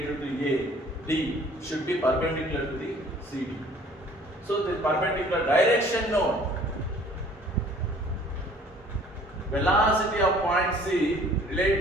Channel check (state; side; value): normal; both; correlation 0.53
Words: to A, D should be perpendicular to the CD. So the perpendicular direction known. Velocity of point C